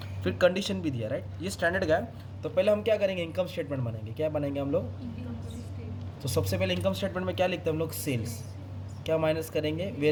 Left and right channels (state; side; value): identical; both; correlation 1.00